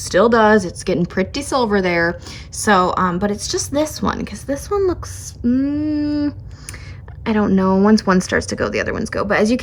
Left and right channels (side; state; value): both; identical; correlation 1.00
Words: does. It's getting pretty silver there. So, but it's just this one, because this one looks, I don't know, once one starts to go, the other ones go. But as you